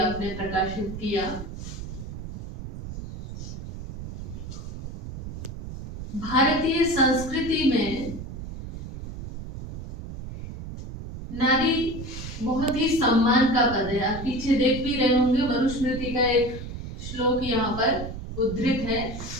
प्रकाशित किया। भारतीय संस्कृति में नारी बहुत ही सम्मान का पद है। आप पीछे देख भी रहे होंगे, मनुस्मृति का एक श्लोक यहाँ पर उद्धृत है।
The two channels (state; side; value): noise; right; rumble, 9 dB below the sound